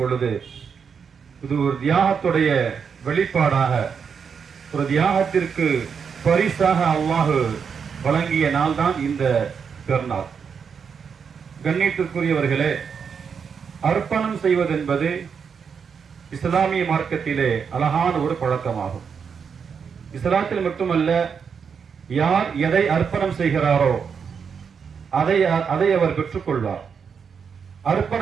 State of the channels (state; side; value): quieter; left; 6.5 dB